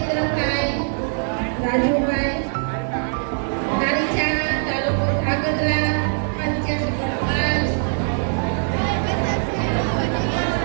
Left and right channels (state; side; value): silent; left; 64 dB below the other